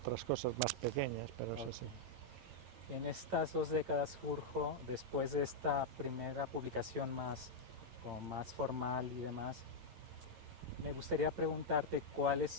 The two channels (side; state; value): left; late; 11 ms